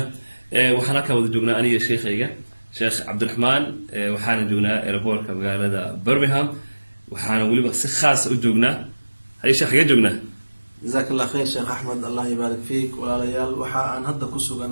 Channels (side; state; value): both; inverted; correlation -1.00